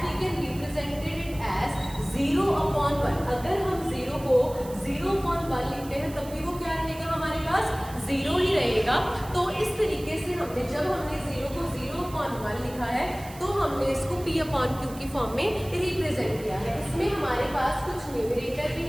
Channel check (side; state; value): right; noise; hiss, 18 dB below the sound